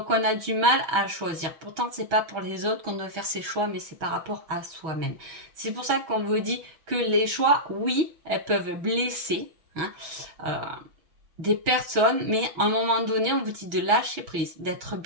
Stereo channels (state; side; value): late; left; 6.3 ms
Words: on a du mal à choisir. Pourtant, c'est pas pour les autres qu'on doit faire ses choix, mais c'est par rapport à soi-même. C'est pour ça qu'on vous dit que les choix, oui, elles peuvent blesser, hein, euh, des personnes, mais à un moment donné, on vous dit de lâcher prise, d'être